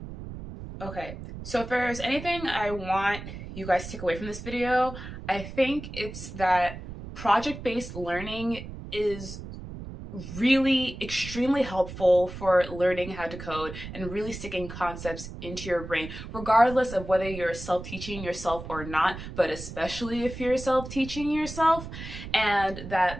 Okay, so if there's anything I want you guys to take away from this video, I think it's that project-based learning is really extremely helpful for learning how to code and really sticking concepts into your brain, regardless of whether you're self-teaching yourself or not, but especially if you're self-teaching yourself. And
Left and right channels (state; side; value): noise; right; rumble, 11 dB below the sound